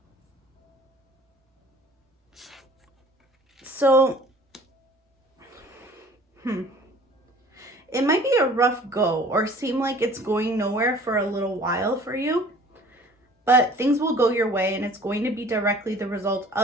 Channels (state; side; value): normal; both; correlation 0.49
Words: So, it might be a rough go or seem like it's going nowhere for a little while for you, but things will go your way and it's going to be directly the result